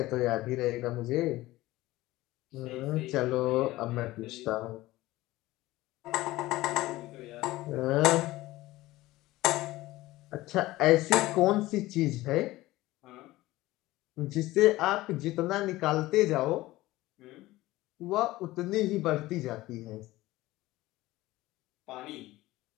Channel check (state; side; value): quieter; right; 17.8 dB